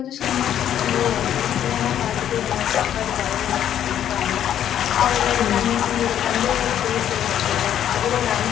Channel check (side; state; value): right; quieter; 10.4 dB